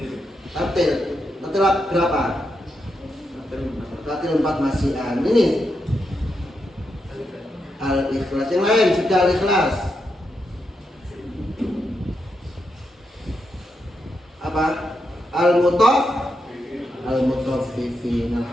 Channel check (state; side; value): normal; both; correlation 0.84